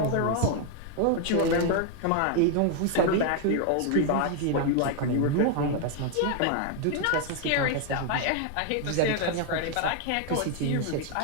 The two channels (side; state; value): both; different; correlation 0.01